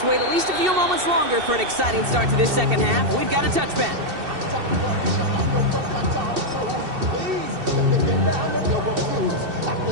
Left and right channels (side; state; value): left; late; 2.7 ms